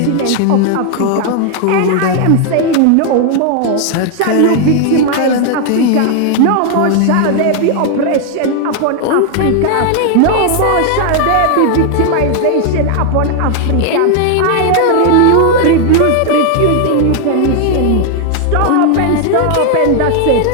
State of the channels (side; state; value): both; different; correlation 0.00